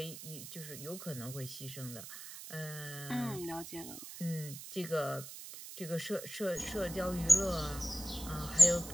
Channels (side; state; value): right; noise; hiss, 11 dB below the sound